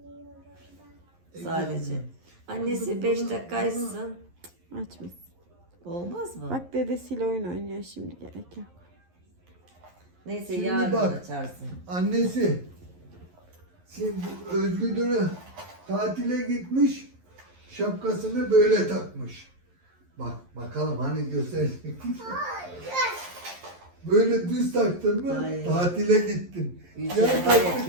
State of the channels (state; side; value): late; left; 11 ms